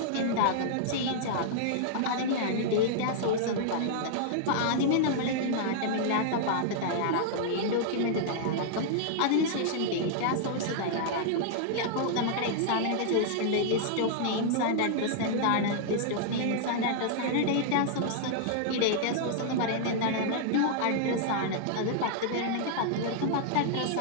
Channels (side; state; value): both; different; correlation -0.01